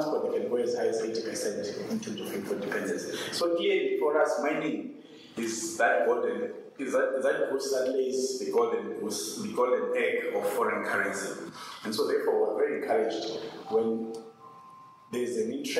they can go as high as 80% in terms of import dependency. So clearly for us, mining is that golden goose that lays the golden egg of foreign currency. And so therefore we're very encouraged when there's an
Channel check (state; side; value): identical; both; correlation 1.00